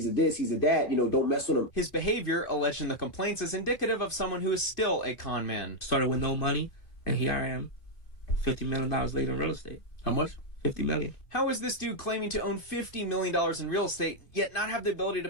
a this, he's a that, don't mess with him. His behavior, alleged in the complaints, is indicative of someone who is still a con man. Started with no money, and here I am, $50 million later in real estate. How much? $50 million. How is this dude claiming to own $50 million in real estate, yet not have the ability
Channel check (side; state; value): right; late; 2.4 ms